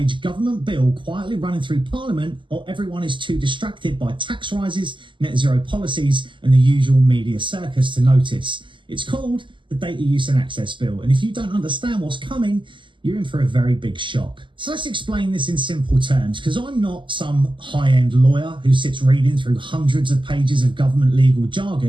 government bill quietly running through Parliament while everyone is too distracted by tax rises, net zero policies, and the usual media circus to notice. It's called the Data Use and Access Bill. And if you don't understand what's coming, you're in for a very big shock. So let's explain this in simple terms, because I'm not some high-end lawyer who sits reading through hundreds of pages of government legal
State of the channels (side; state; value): left; late; 0.24 ms